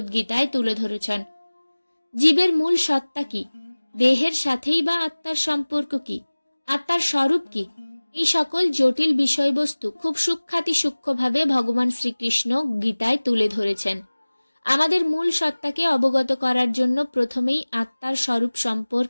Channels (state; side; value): inverted; both; correlation -1.00